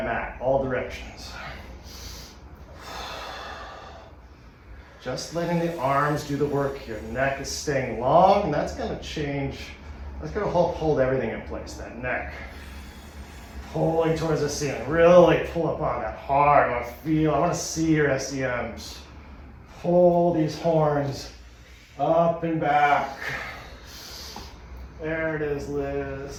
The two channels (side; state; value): both; identical; correlation 1.00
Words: mat, all directions. Just letting the arms do the work here. Neck is staying long, and that's gonna change. That's gonna help hold everything in place, that neck. Pulling towards the ceiling. Really pull up on that hard. I wanna see your SEMs. Pull these horns up and back. There it is,